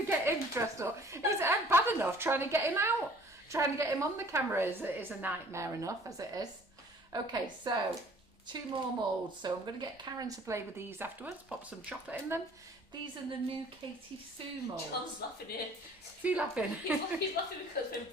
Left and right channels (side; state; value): both; normal; correlation 0.53